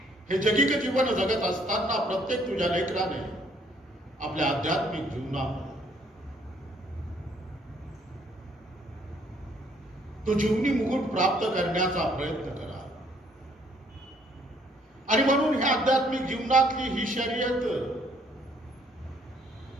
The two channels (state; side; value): normal; both; correlation 0.65